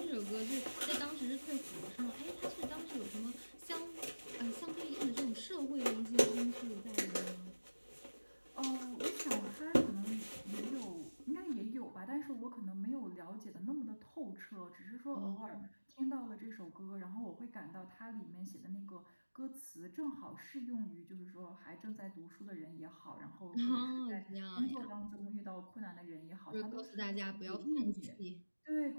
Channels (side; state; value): both; inverted; correlation -1.00